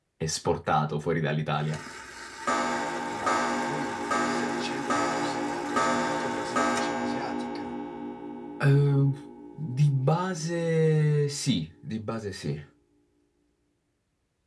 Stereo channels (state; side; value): identical; both; correlation 1.00